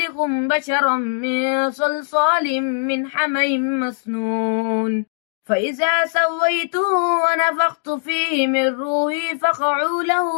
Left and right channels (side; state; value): right; silent; digital silence